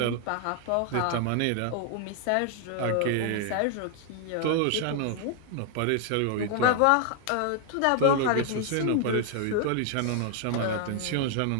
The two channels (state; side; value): different; both; correlation 0.00